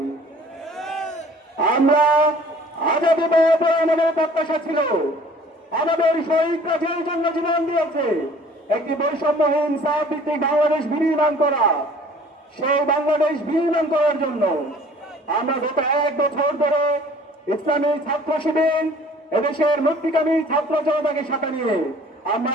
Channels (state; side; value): normal; both; correlation 0.52